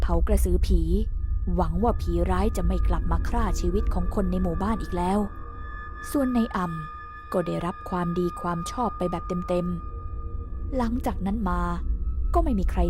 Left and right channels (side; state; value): both; identical; correlation 1.00